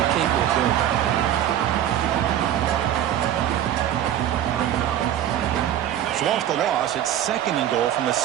capable of doing. So off the loss, it's 2nd and goal from the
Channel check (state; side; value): quieter; left; 11.2 dB